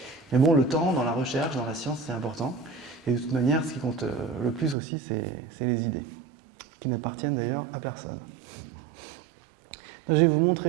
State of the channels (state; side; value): drops out; left; at 4.8 s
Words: Mais bon, le temps dans la recherche, dans la science, c'est important. Et de toute manière, ce qui compte le plus aussi, c'est les idées, qui n'appartiennent d'ailleurs à personne. Donc, je vais vous